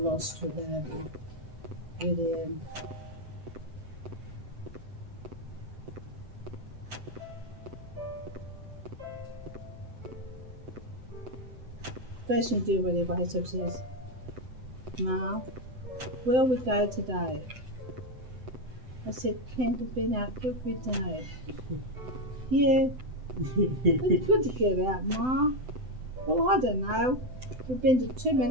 lost without him. Really am. First thing to do when he wakes up says, Ma, where we go today? I said, Ken, we've been out every day. Yeah, it's good to get out, Ma. Well, I don't know. We've been to too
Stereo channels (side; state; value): left; late; 7.9 ms